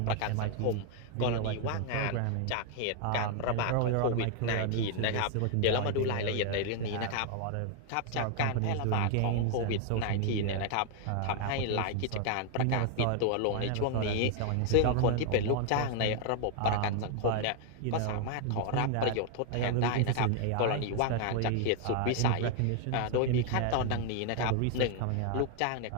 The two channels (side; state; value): both; different; correlation 0.00